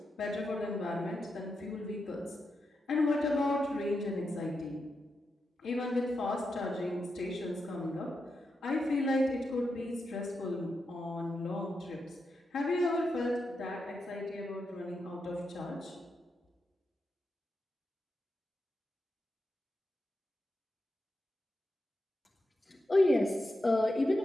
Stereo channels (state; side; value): normal; both; correlation 0.87